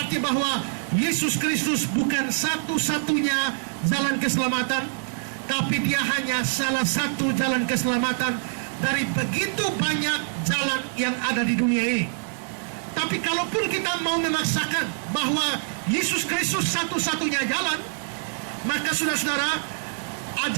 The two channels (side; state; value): left; silent; 61 dB below the other